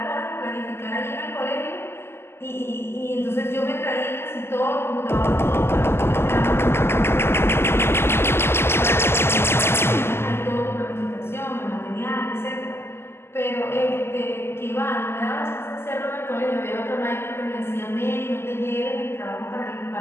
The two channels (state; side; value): late; right; 0.12 ms